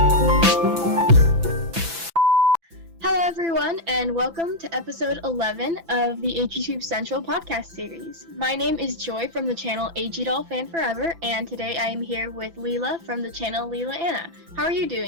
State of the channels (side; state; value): left; late; 6.0 ms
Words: and welcome to episode 11 of the AGTube Central podcast series. My name is Joy from the channel AGTube Fan Forever, and today I am here with Lillah from the channel Lillah Anna. How are you